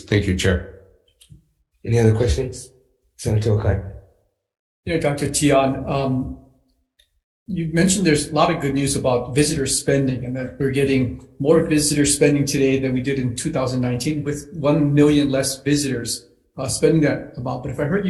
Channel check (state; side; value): identical; both; correlation 1.00